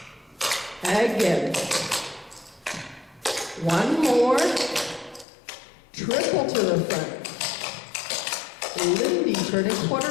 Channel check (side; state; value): right; drops out; at 5.2 s